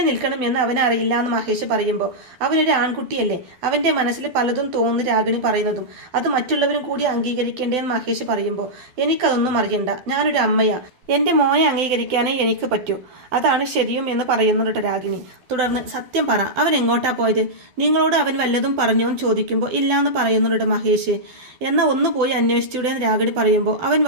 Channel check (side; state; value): left; late; 12 ms